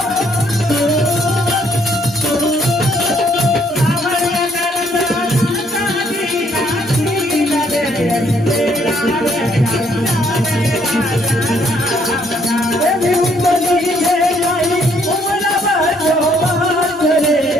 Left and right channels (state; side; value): normal; both; correlation 0.67